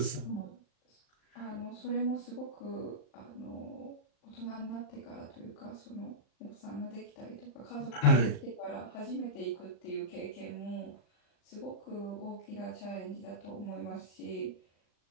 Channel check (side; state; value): right; late; 39 ms